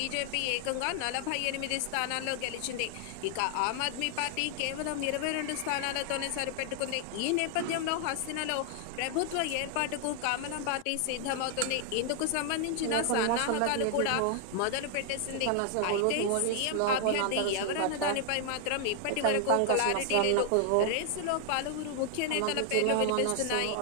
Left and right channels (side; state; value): both; different; correlation 0.00